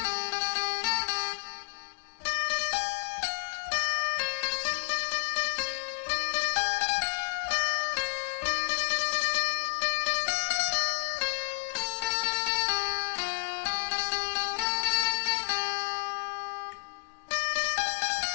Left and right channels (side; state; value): right; silent; digital silence